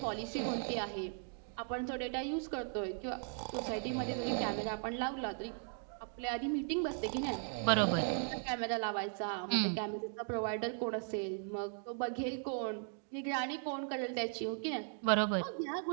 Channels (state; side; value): silent; left; 53 dB below the other